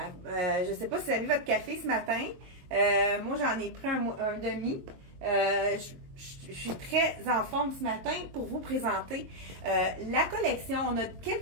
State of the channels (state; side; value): late; left; 22 ms